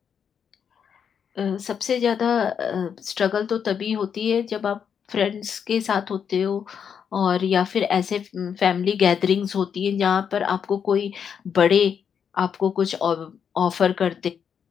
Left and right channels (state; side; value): quieter; right; 7.4 dB